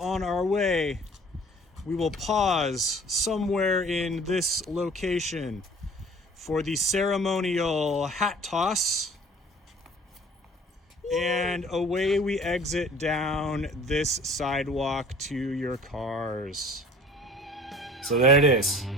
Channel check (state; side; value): normal; both; correlation 0.48